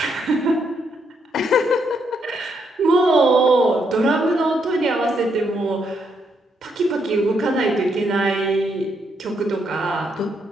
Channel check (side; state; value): both; normal; correlation 0.76